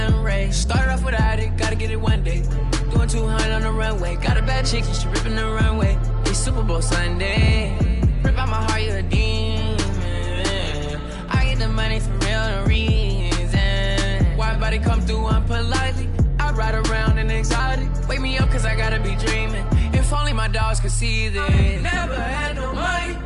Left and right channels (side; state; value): both; identical; correlation 1.00